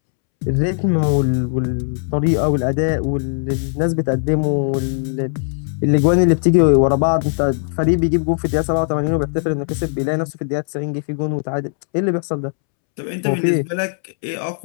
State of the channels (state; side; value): silent; right; 67 dB below the other